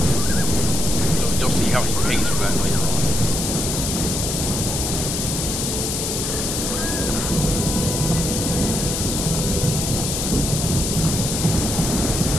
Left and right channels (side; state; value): left; noise; hiss, 1 dB below the sound